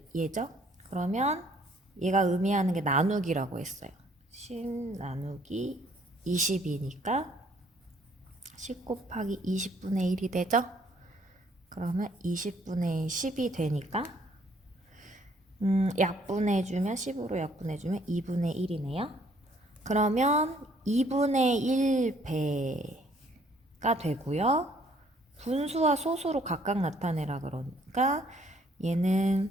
얘죠? 그러면 얘가 의미하는 게 나누기라고 했어요. 10 나누기 20이니까 10 곱하기 20분의 1이 되죠? 그러면 20분의 10이 되니까 약분해주면 10으로 약분해주면 2분의 1이네요. 그러면 2분의 1배가 되고요. 분수와 소수로 각각 나타내라 그러니까 얘는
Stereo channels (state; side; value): normal; both; correlation 0.63